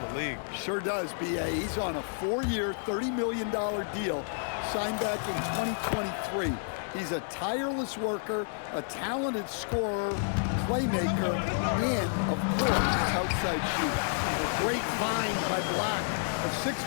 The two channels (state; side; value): silent; right; 58 dB below the other